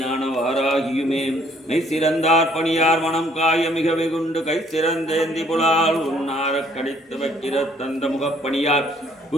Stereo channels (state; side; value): normal; both; correlation 0.63